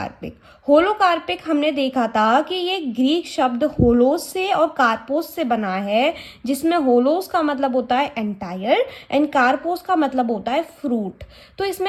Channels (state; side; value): identical; both; correlation 1.00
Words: होलोकार्पिक हमने देखा था कि ये ग्रीक शब्द होलोस से और कार्पोस से बना है, जिसमें होलोस का मतलब होता है एंटायर एंड कार्पोस का मतलब होता है फ्रूट। तो